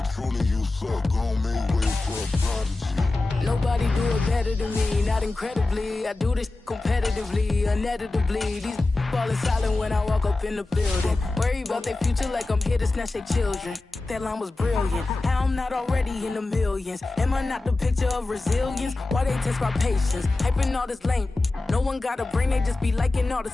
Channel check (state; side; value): quieter; right; 3.1 dB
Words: truly you suck, gon' make way for a prodigy. Nobody do it better than me, not incredibly. I do this competitively, uneditably. These falling silent when I walk up in the building. Worry about their future like I'm here to snatch their children. That line was brilliant. How I'm not already in the millions. Am I not the picture of resilience? Why they test my patience? Hyping all this lame. No one got a brain, they just be liking all the